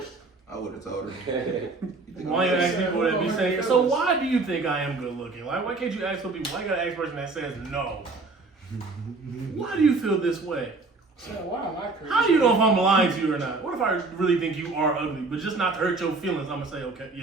I would have told her. Why you ask people that be saying, so why do you think I am good looking? Like, why can't you ask some people? Why you gotta ask a person that says no? Why do you feel this way? So why am I crazy? How do you know if I'm lying to you or not? What if I really think you are ugly, but just not to hurt your feelings, I'm gonna say, okay,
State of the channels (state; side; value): quieter; left; 3.6 dB